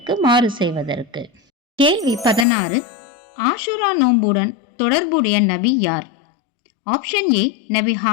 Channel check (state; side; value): drops out; right; at 2.5 s